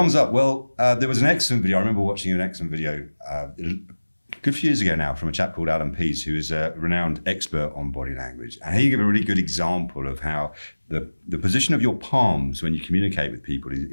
up. Well, there was an excellent video. I remember watching an excellent video a good few years ago now from a chap called Alan Pease, who is a renowned expert on body language. And he gave a really good example of how the position of your palms when you communicate with people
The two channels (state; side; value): inverted; both; correlation -1.00